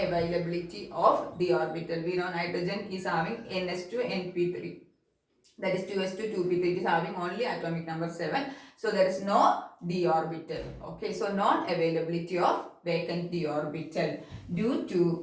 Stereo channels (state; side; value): identical; both; correlation 1.00